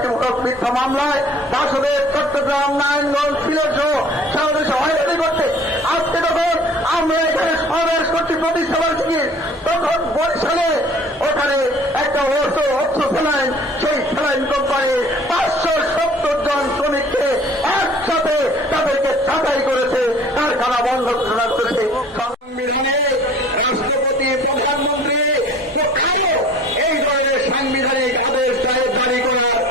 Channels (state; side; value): normal; both; correlation 0.49